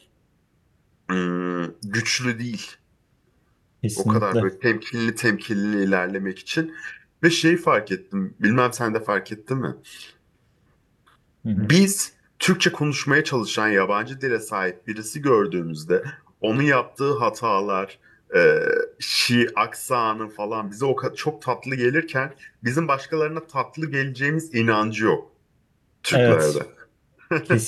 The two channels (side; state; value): both; identical; correlation 1.00